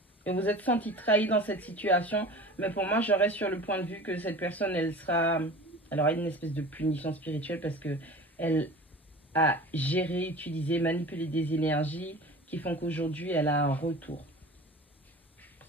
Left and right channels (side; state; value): both; normal; correlation 0.38